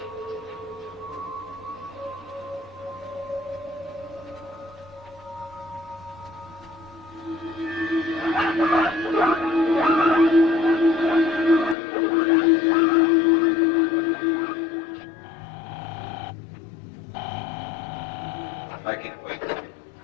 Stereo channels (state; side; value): drops out; right; at 11.8 s